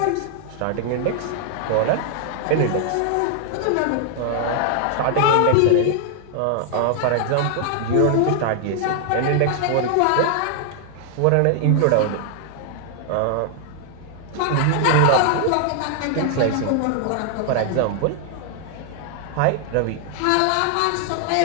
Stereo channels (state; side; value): different; both; correlation 0.00